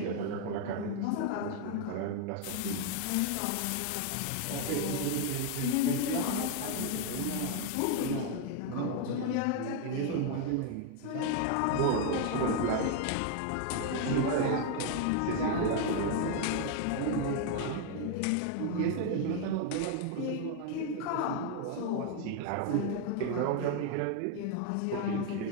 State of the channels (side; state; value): both; different; correlation 0.01